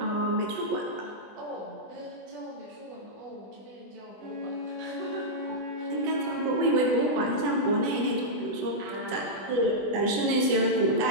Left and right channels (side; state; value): left; late; 20 ms